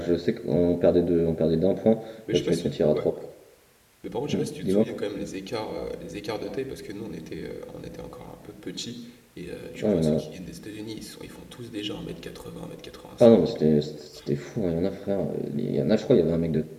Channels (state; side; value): identical; both; correlation 1.00